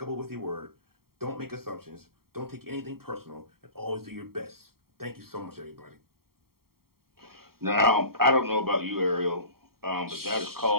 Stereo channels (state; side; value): late; left; 0.94 ms